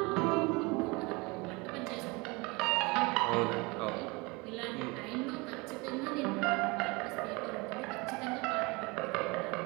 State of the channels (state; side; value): quieter; left; 26.1 dB